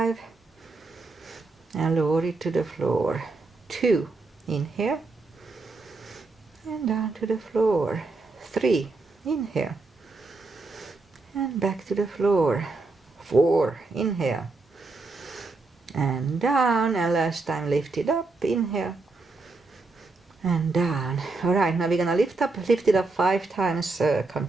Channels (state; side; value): quieter; left; 3.5 dB